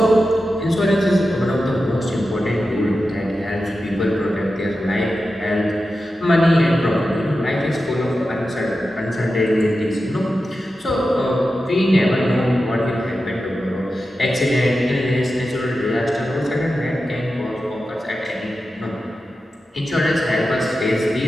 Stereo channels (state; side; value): normal; both; correlation 0.91